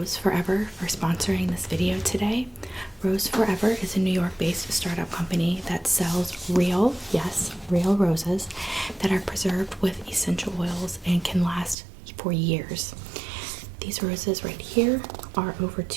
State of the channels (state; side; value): drops out; left; at 11.8 s